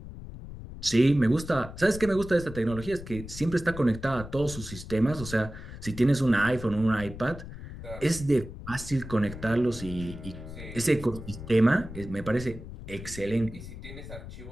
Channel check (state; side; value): noise; left; rumble, 12 dB below the sound